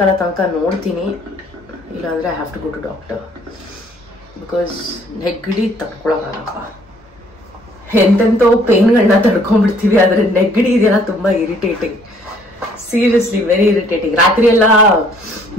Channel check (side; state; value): both; normal; correlation 0.61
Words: ತನಕ ನೋಡ್ತೀನಿ, ಇಲ್ಲಾಂದ್ರೆ I have to go to doctor because ನೆಗಡಿ ತಡ್ಕೊಳಕ್ಕಾಗಪ್ಪ. ಎಂತೆಂತೋ ಪೇನ್ಗಳನ್ನ ತಡ್ಕೊಂಡ್ಬಿಡ್ತೀವಿ, ಆದ್ರೆ ನೆಗಡಿ ಇದೆಲ್ಲ ತುಂಬಾ ಇರಿಟೇಟಿಂಗ್, ಸೀರಿಯಸ್ಲಿ ವೆರಿ ಇರಿಟೇಟಿಂಗ್. ರಾತ್ರಿ ಎಲ್ಲ